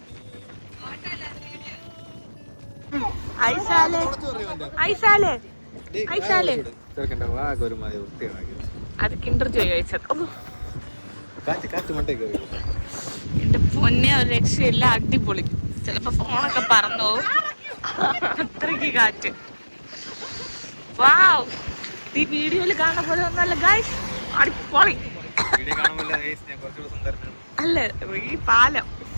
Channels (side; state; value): both; inverted; correlation -1.00